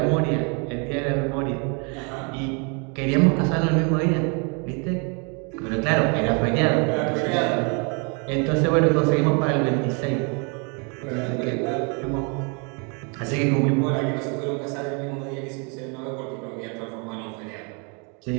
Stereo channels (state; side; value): quieter; left; 34.7 dB